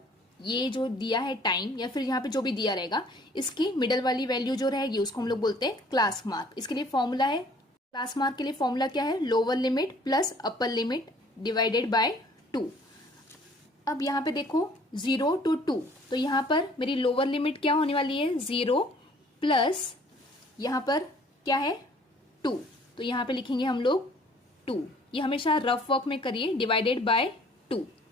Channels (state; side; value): normal; both; correlation 0.56